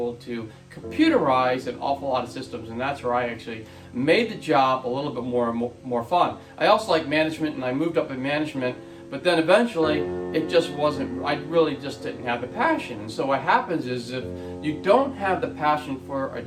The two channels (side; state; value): both; identical; correlation 1.00